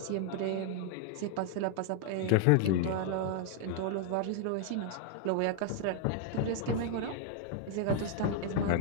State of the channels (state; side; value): different; both; correlation -0.01